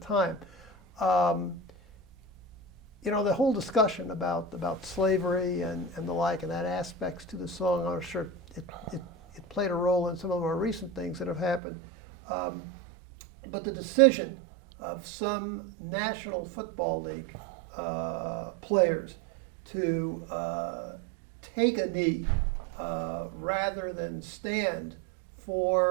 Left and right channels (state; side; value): drops out; left; at 11.6 s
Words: The whole discussion about slavery and the like, and that aspects to the song, I'm sure it played a role in some of the more recent things that have happened. But the decision of some National Football League players to take a knee rather than stand